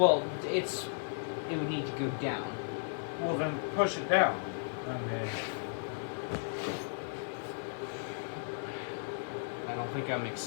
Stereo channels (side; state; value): right; silent; digital silence